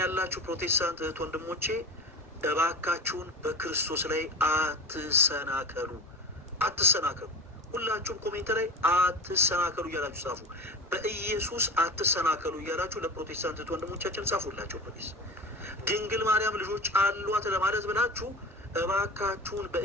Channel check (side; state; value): both; normal; correlation 0.31